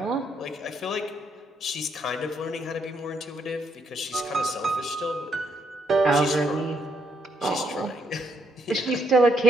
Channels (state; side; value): normal; both; correlation 0.75